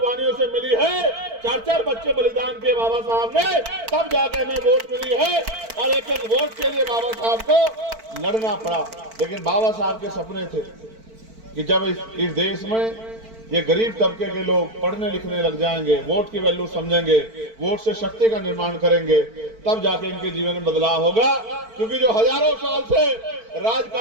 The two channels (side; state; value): left; late; 4.5 ms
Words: से मिली है। 4-4 बच्चे बलिदान के बाबा साहब ने, तब जाकर हमें वोट मिली है। और एक एक वोट के लिए बाबा साहब को लड़ना पड़ा। लेकिन बाबा साहब के सपने थे कि जब इस देश में ये गरीब तबके के लोग पढ़ने लिखने लग जाएंगे, वोट की वैल्यू समझेंगे, वोट से शक्ति का निर्माण करेंगे, तब जाके इनके जीवन में बदलाव होगा। क्योंकि जो हजारों साल से